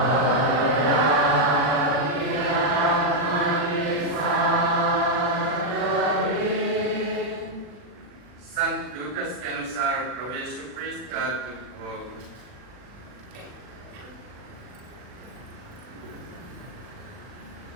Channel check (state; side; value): late; left; 40 ms